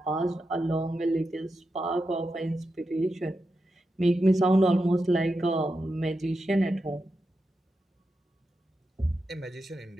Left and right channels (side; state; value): both; normal; correlation 0.88